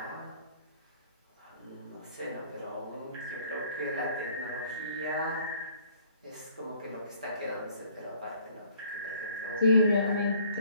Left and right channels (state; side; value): inverted; both; correlation -0.58